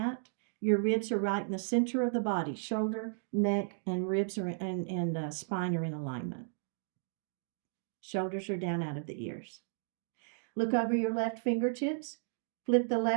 Your ribs are right in the center of the body. Shoulder, neck, and ribs are and spine are in alignment. Shoulders are down out of the ears. Look over your left fingertips. Flip the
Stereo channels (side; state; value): left; silent; digital silence